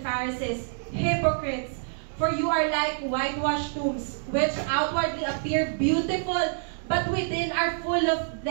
hypocrites, for you are like whitewashed tombs, which outwardly appear beautiful, but within are full of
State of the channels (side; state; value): left; silent; digital silence